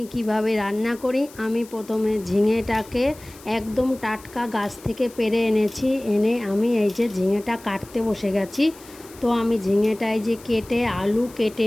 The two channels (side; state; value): left; noise; hiss, 21 dB below the sound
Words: কিভাবে রান্না করি। আমি প্রথমে ঝিঙেটাকে একদম টাটকা গাছ থেকে পেড়ে এনেছি, এনে আমি এই যে ঝিঙেটা কাটতে বসে গেছি। তো আমি ঝিঙেটা এই যে কেটে আলু কেটে